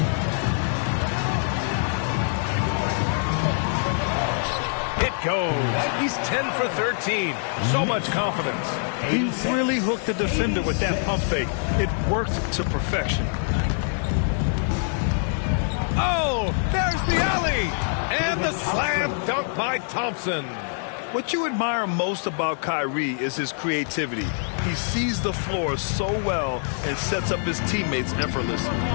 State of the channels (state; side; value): silent; right; 62 dB below the other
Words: It goes. He's 10 for 13. So much confidence. He really hooked the defender with that pump fake. It worked to perfection. Oh, there's the alley. And the slam dunk by Thompson. What you admire most about Kyrie is his creativity. He sees the floor so well and sets up his teammates effortlessly.